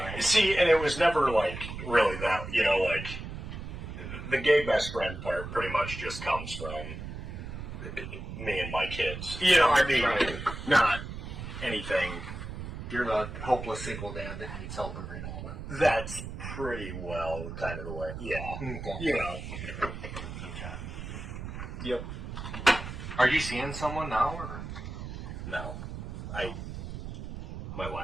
See, and it was never like really that, like the gay best friend part pretty much just comes from me and my kids. I mean, Right. not anything. You're the hopeless single dad that needs help every now and then. That's pretty well kind of the way. Yeah. Okay. Okay. Yep. Are you seeing someone now, or? No. My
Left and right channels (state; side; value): noise; right; rumble, 8 dB below the sound